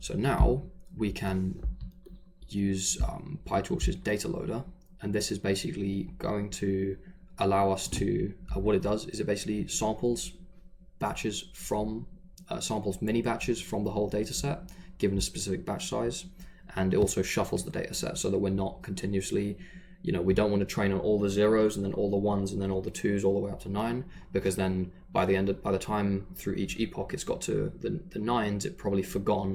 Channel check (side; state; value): both; identical; correlation 1.00